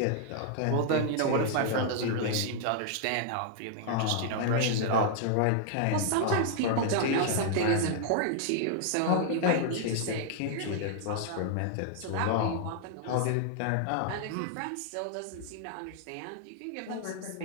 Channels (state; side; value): different; both; correlation 0.00